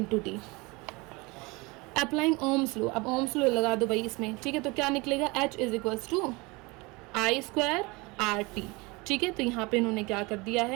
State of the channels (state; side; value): quieter; left; 25.3 dB